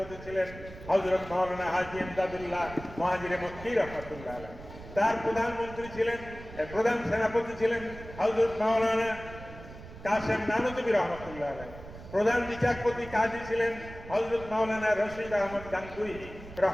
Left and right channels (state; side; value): noise; right; rumble, 15 dB below the sound